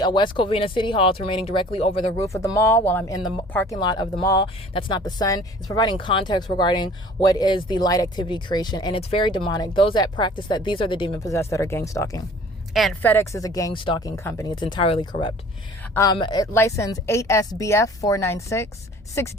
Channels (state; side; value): normal; both; correlation 0.49